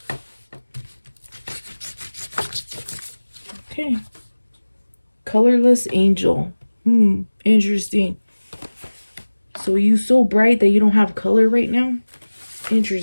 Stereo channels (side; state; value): both; inverted; correlation -1.00